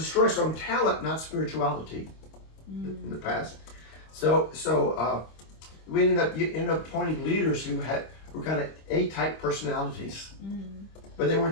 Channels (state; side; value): late; right; 25 ms